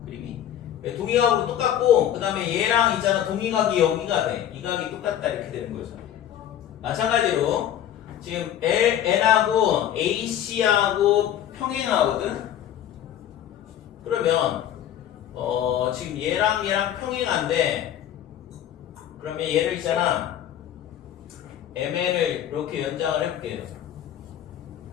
그림이 동의각으로 똑같고, 그 다음에 얘랑 있잖아, 동의각이 여기가 돼. 이 각이 똑같다 이렇게 되는 거죠. 마찬가지로 지금 LN하고 AC하고 평행하거든. 그러면 지금 얘랑 평행한데, 그러면 얘를 있잖아, MN을 이렇게 연장을 해볼게요.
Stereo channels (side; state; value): right; quieter; 10.7 dB